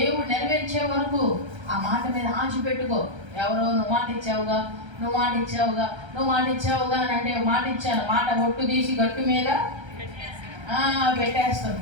నెరవేర్చే వరకు ఆ మాట మీద ఆశ పెట్టుకో. ఎవరో నువ్వు మాట ఇచ్చావుగా, నువ్వు మాట ఇచ్చావుగా, నువ్వు మాట ఇచ్చావుగా అని అంటే, మాట ఇచ్చాను, మాట ఒట్టు తీసి గట్టు మీద పెట్టేస్తాను.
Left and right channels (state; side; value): late; left; 1.3 ms